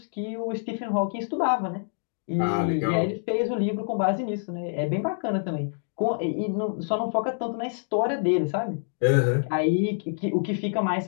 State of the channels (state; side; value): silent; right; digital silence